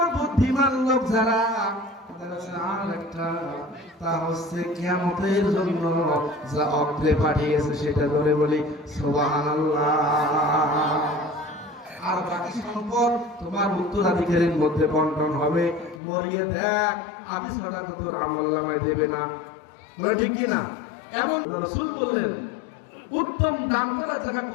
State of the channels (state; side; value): drops out; right; at 16.0 s